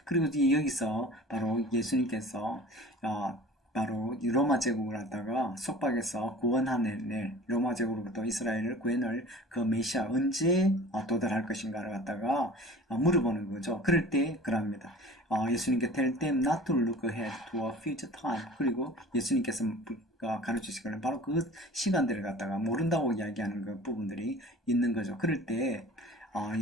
그리고 여기서 바로 예수님께서 바로 이 로마 제국을 갖다가 속박해서 구원하는 로마 제국으로부터 이스라엘을 구해낼 그 메시아 언제 도달할 것인가를 갖다가 물어보는 거죠. 그럴 때 그럽니다. 예수님께 tell them not to look ahead to a future time. 그리고 예수님께서 가르치시기를 바로 그 시간들을 갖다가 모른다고 이야기하는 그 부분들이 있는 거죠. 그럴 때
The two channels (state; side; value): normal; both; correlation 0.43